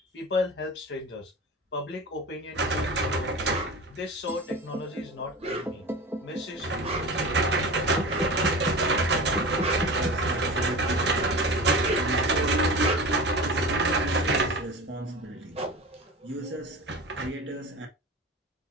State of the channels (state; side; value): normal; both; correlation 0.31